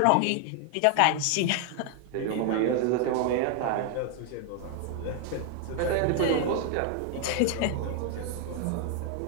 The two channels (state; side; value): different; both; correlation 0.00